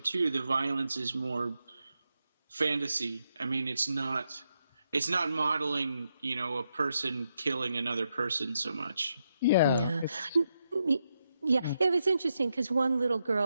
2, the violence is more fantasy. I mean, it's not modeling, a person killing another person so much. Yeah. Yeah, it was interesting because one little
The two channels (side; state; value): both; inverted; correlation -0.83